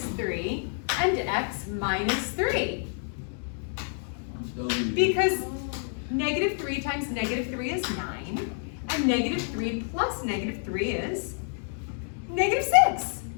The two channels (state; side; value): silent; right; 58 dB below the other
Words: 3 and x minus 3. Because -3 times -3 is 9, and -3 plus -3 is -6.